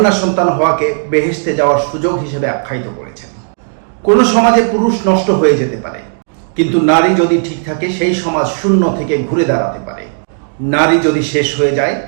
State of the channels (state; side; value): silent; left; digital silence